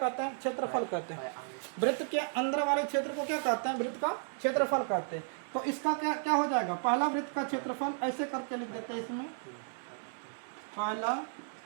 हैं? क्षेत्रफल कहते हैं। वृत्त के अंदर वाले क्षेत्र को क्या कहते हैं? वृत्त का क्षेत्रफल कहते हैं। तो इसका क्या हो जाएगा? पहला वृत्त का क्षेत्रफल ऐसे करके लिख देते हैं इसमें, पहला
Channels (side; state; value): left; silent; digital silence